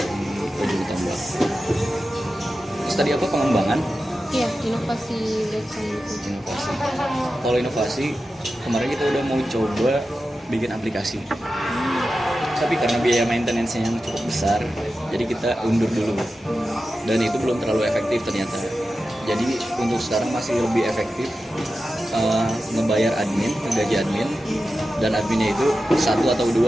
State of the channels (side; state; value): both; normal; correlation 0.92